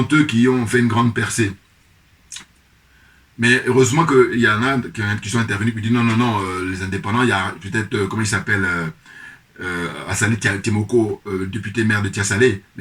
eux qui ont fait une grande percée. Mais heureusement qu'il y en a qui sont intervenus et qui disent non, non, non, les indépendants, il y a peut-être, comment il s'appelle, Assalé Timoko, député maire de Tiasalé, mais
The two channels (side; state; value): both; identical; correlation 1.00